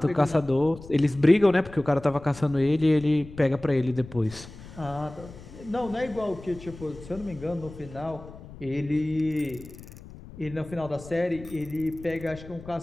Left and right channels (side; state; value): left; noise; rumble, 17 dB below the sound